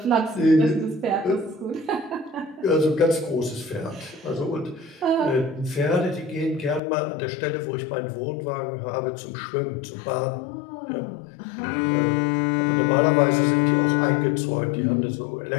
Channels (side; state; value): right; drops out; at 6.8 s